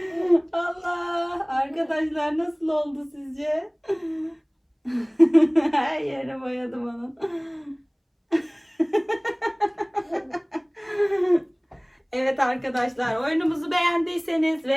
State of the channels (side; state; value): both; identical; correlation 1.00